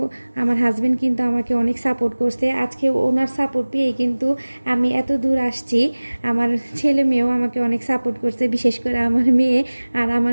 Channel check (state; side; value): inverted; both; correlation -1.00